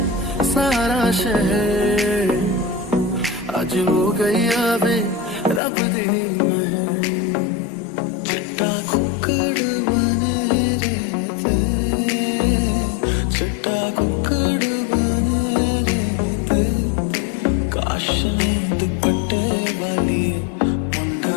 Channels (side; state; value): right; drops out; at 5.6 s